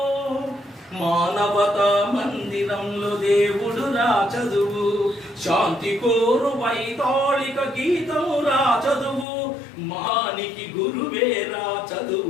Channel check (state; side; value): drops out; right; at 9.2 s